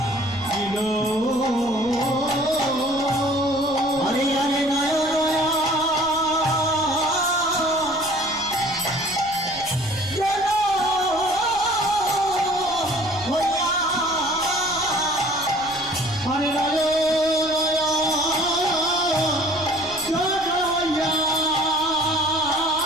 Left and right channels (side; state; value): left; noise; rumble, 21 dB below the sound